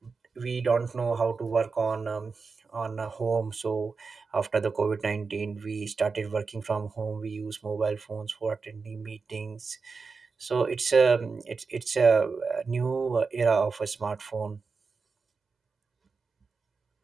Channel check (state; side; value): quieter; left; 4.7 dB